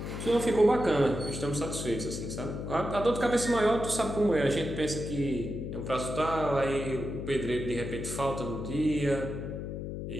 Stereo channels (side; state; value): left; noise; hum, 6 dB below the sound